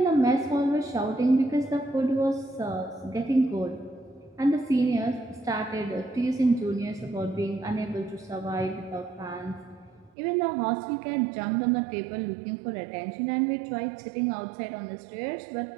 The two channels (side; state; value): left; drops out; at 10.1 s